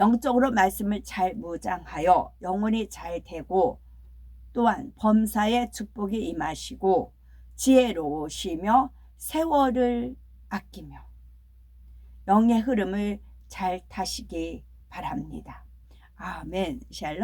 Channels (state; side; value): identical; both; correlation 1.00